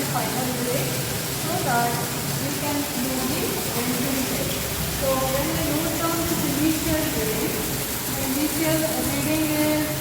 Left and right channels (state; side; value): identical; both; correlation 1.00